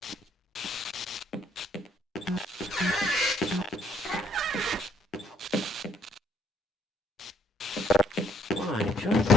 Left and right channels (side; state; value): both; normal; correlation 0.68